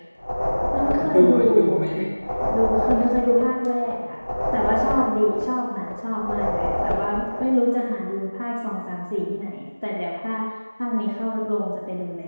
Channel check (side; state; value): both; inverted; correlation -1.00